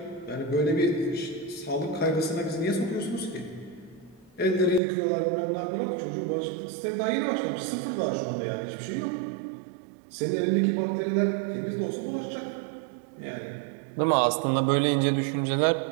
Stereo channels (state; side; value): drops out; left; at 4.8 s